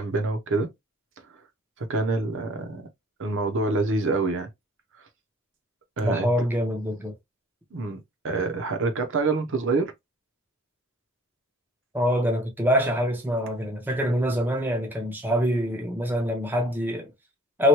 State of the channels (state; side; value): normal; both; correlation 0.52